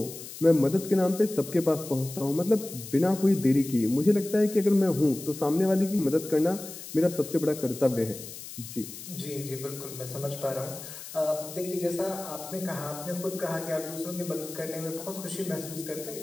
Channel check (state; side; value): noise; left; hiss, 12 dB below the sound